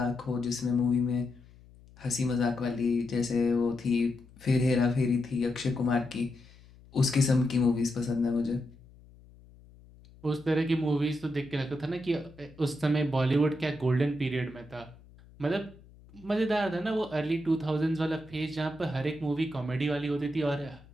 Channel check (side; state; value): left; noise; hum, 24 dB below the sound